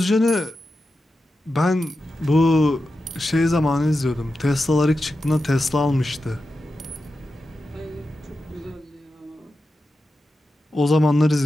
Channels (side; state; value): both; normal; correlation 0.91